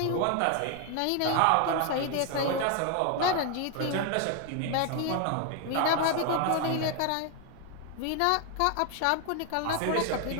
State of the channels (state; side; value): different; both; correlation 0.01